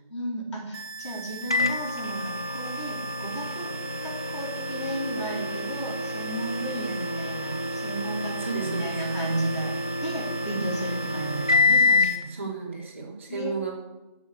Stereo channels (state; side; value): inverted; both; correlation -0.54